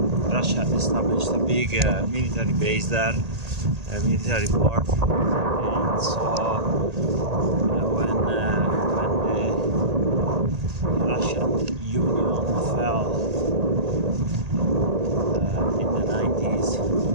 Russia established a big military base there, a military port. And so when the Russian Union fell in the 90s,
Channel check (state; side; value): late; left; 1.8 ms